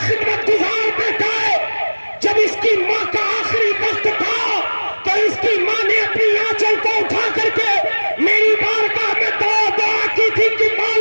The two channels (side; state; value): both; inverted; correlation -1.00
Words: خدمت گزار بیٹا ہے۔ جب اس کی ماں کا آخری وقت تھا تو اس کی ماں نے اپنی آنچل کو اٹھا کر کے میری بارگاہ میں دعا کی تھی کہ